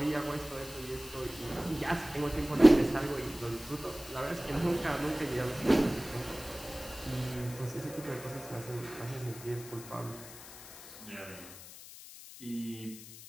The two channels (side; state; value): left; noise; hiss, 15 dB below the sound